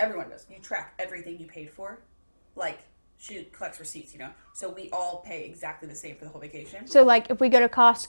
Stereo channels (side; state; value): both; inverted; correlation -1.00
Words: does, you track everything you paid for. Like, she collects receipts, so we all pay exactly the same for the whole vacation. So, like, if we go to